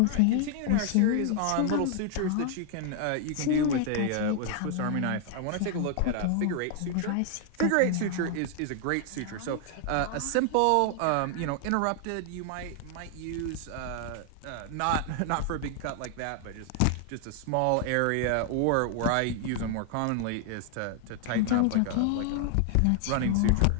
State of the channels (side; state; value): both; different; correlation 0.00